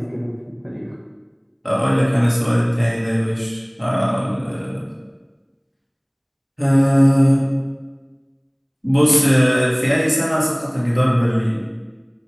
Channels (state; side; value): identical; both; correlation 1.00